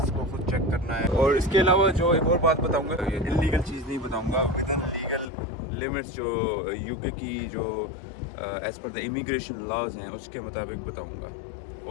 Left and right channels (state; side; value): drops out; right; at 5.2 s